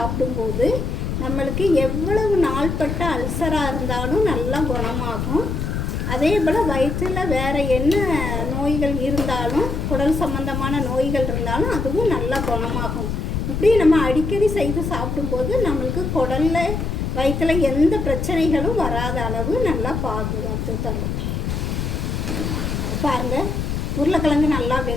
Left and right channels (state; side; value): noise; left; rumble, 2 dB below the sound